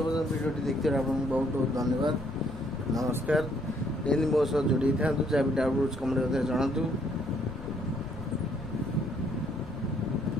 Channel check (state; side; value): noise; left; rumble, 14 dB below the sound